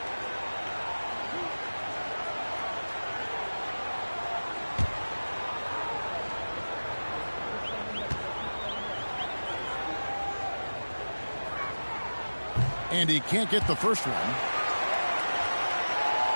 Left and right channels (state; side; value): inverted; both; correlation -1.00